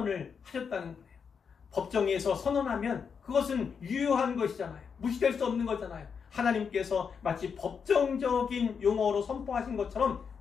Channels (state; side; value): quieter; right; 6.3 dB